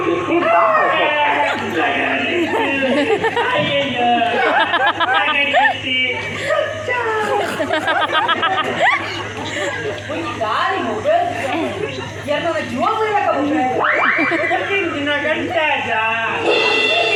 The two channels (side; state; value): both; identical; correlation 1.00